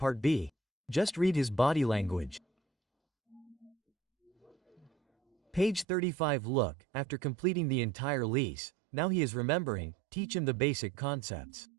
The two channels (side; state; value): left; drops out; at 5.9 s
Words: B. Just read his body language. Page 35. Look, after completing the entire lease, now he is remembering, teach him the basic concepts.